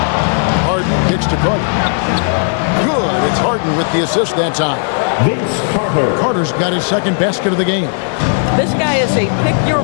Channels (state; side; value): silent; right; digital silence